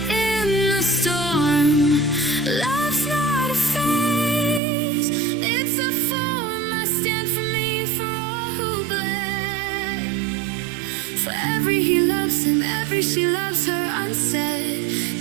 in the storm. Love's not a phase, it's a form. I stand for me, for all who bled. For every he loves him, every she loves her unsaid.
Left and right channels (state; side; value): drops out; left; at 4.6 s